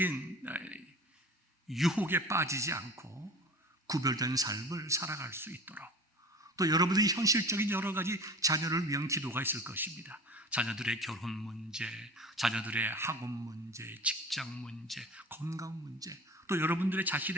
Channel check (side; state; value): both; normal; correlation 0.39